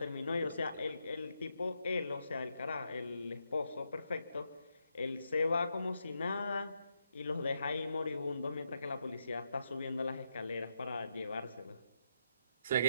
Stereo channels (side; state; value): both; inverted; correlation -0.81